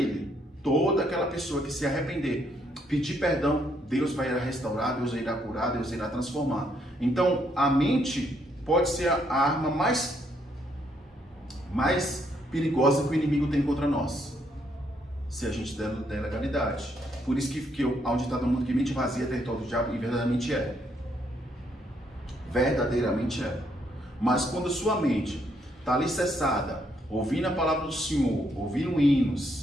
Toda aquela pessoa que se arrepender, pedir perdão, Deus vai irá restaurar, Deus irá curar, Deus irá transformar. Então, a mente pode ser a arma mais perigosa que o inimigo tem contra nós, se a gente der legalidade. Por isso que há um ditado no mundo que mente vazia é território do diabo, e verdadeiramente é. Verdadeiramente é. Mas quando sua mente está alicerçada, ouvindo a palavra do Senhor, ouvindo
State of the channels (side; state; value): both; normal; correlation 0.73